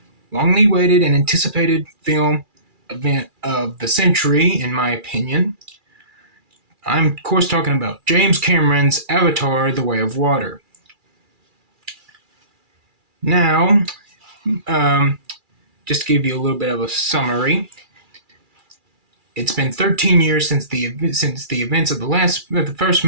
waited and anticipated film event of the century, in my opinion. I'm of course talking about James Cameron's Avatar: The Way of Water. Now, um, just to give you a little bit of a summary, it's been 13 years since the events of the first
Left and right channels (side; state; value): left; late; 2.4 ms